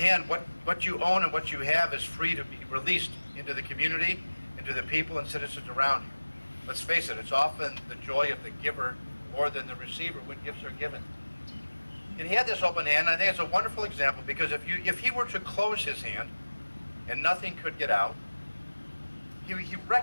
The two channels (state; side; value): inverted; both; correlation -1.00